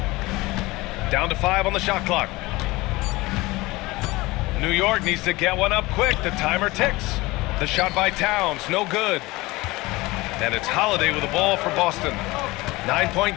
Down to 5 on the shot clock. New York needs to get one up quick. The timer ticks. The shot by Towns, no good. And it's Holiday with the ball for Boston. 9-point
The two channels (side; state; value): right; quieter; 21.1 dB